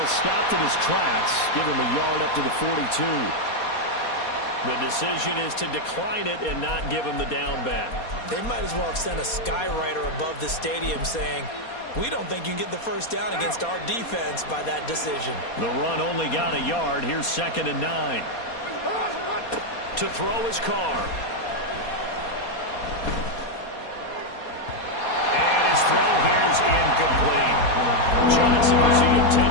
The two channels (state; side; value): late; right; 4.2 ms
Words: stopped in his tracks. Give him a yard up to the 42. The decision is to decline it and not give him the down back. They might as well have sent a skywriter above the stadium saying, we don't think you can get the first down against our defense by that decision. The run only got a yard. Here's 2nd and 9. To throw his Carr. And his throw here is incomplete. Johnson was the